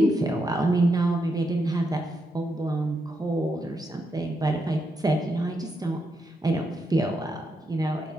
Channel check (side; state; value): both; normal; correlation 0.82